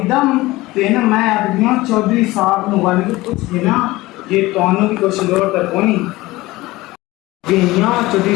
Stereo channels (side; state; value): right; quieter; 19.3 dB